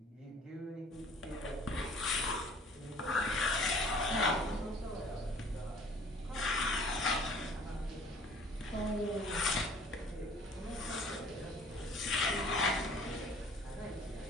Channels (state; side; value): normal; both; correlation 0.52